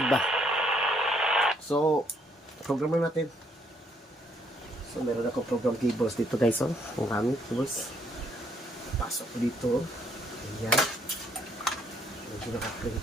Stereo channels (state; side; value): normal; both; correlation 0.69